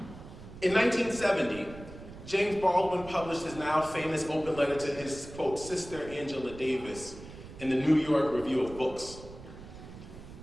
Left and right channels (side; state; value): right; noise; rumble, 15 dB below the sound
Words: In 1970, James Baldwin published his now famous open letter to his, quote, sister Angela Davis in the New York Review of Books.